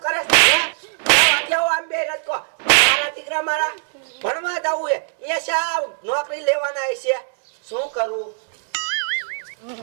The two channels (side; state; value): left; silent; digital silence